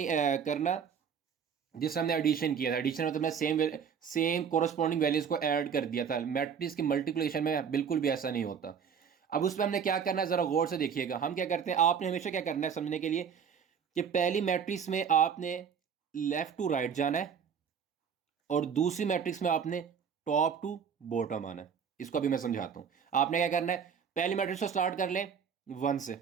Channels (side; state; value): left; quieter; 7.1 dB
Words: करना जिससे हमने एडिशन किया था। एडिशन मतलब सेम कोरस्पॉन्डिंग वैल्यूज को ऐड कर दिया था। मैट्रिक्स की मल्टीप्लिकेशन में बिल्कुल भी ऐसा नहीं होता। अब उस पर हमने क्या करना है, जरा गौर से देखिएगा। हम क्या करते हैं, आपने हमेशा क्या करना है समझने के लिए कि पहली मैट्रिक्स में आपने लेफ्ट टू राइट जाना है और दूसरी मैट्रिक्स में आपने टॉप टू बॉटम आना है। इसको अभी मैं समझाता हूं। आपने क्या करना है, पहली मैट्रिक्स को स्टार्ट कर लें 1 से।